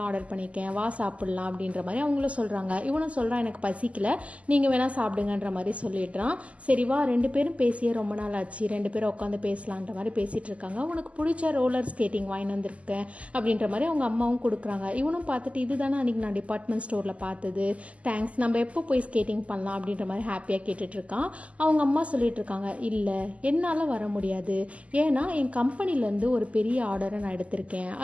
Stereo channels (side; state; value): left; late; 0.066 ms